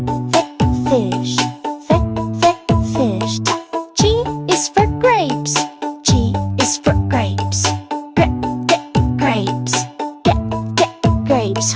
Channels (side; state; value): both; identical; correlation 1.00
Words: Fish. Fish. G is for grapes. G is for grapes. Grapes. Grapes.